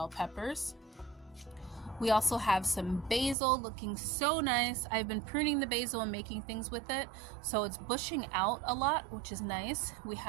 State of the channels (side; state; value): left; drops out; at 3.4 s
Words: peppers. We also have some basil looking so nice. I've been pruning the basil and making things with it, so it's bushing out a lot, which is nice. We